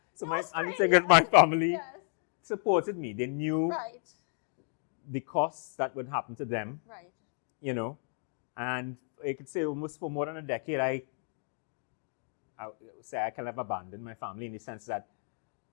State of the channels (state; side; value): silent; right; 56 dB below the other